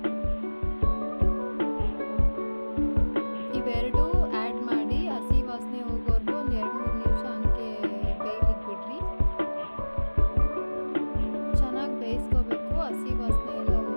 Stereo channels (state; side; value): inverted; both; correlation -1.00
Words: ಇವೆರಡು ಆ್ಯಡ್ ಮಾಡಿ ಹಸಿ ವಾಸನೆ ಹೋಗೋವರೆಗೂ ಒಂದು 2-3 ನಿಮಿಷ ಹಂಗೆ ಬೇಯಲಿಕ್ಕೆ ಬಿಡ್ರಿ. ಚೆನ್ನಾಗಿ ಬೇಯಿಸ್ಕೋಬೇಕು, ಹಸಿ ವಾಸನೆ ಎಲ್ಲ